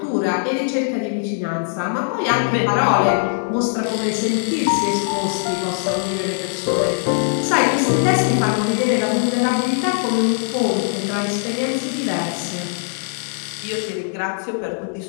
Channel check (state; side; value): silent; right; 62 dB below the other